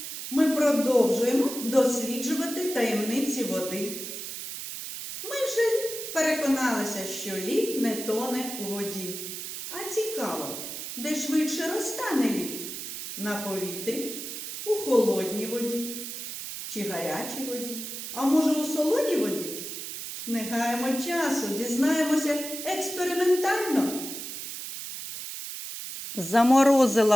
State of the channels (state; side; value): noise; right; hiss, 7 dB below the sound